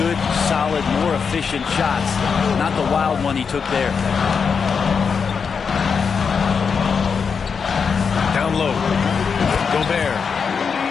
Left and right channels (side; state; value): right; quieter; 5.9 dB